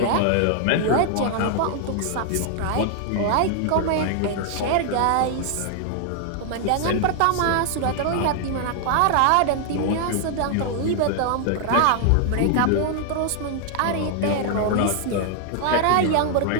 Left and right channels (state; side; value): different; both; correlation 0.00